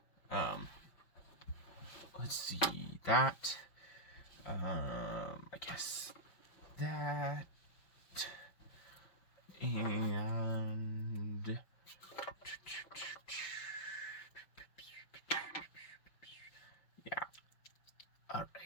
Let's see that. I guess that. And yeah, all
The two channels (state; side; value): late; right; 5.6 ms